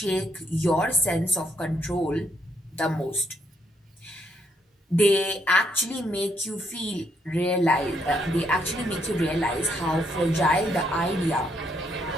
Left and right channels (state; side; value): normal; both; correlation 0.74